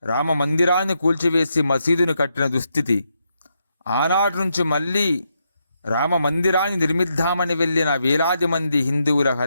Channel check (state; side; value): inverted; both; correlation -0.81